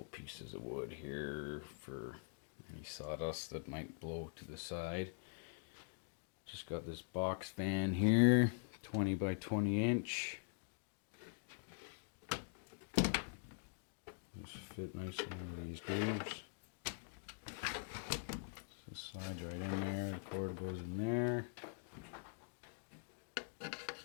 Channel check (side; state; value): right; silent; digital silence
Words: pieces of wood here for any sawdust that might blow to the side. Just got this box fan here, 20 by 20 inch. Just fit nicely into these grooves. So it slides right in there, the cord goes in there.